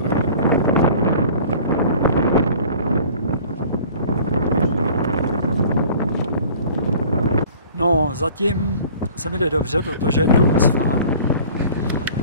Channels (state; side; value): inverted; both; correlation -0.47